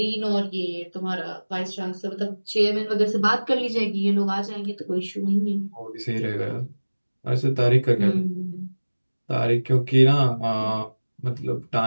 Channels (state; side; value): inverted; both; correlation -1.00